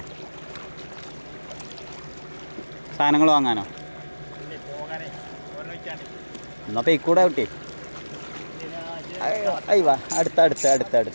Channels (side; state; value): both; inverted; correlation -1.00